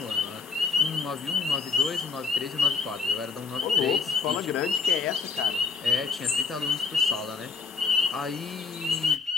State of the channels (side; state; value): right; quieter; 4.9 dB